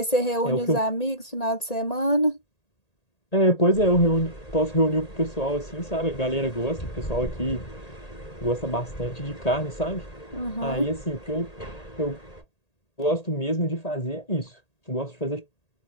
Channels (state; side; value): late; right; 1.8 ms